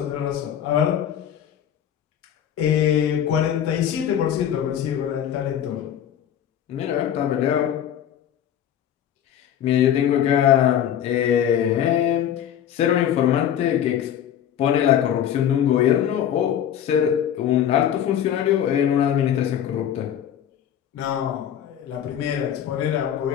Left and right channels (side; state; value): right; quieter; 10.0 dB